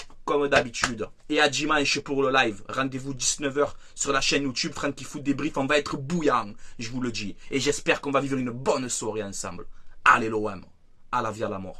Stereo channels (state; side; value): identical; both; correlation 1.00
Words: Comme d'habitude. Et à dimanche pour le live. Rendez-vous 19 h sur la chaîne YouTube Franky Foot Débrief. On va être bouillant. Je vous le dis. Et j'espère qu'on va vivre une bonne soirée ensemble. Allez l'OM. À la vie, à la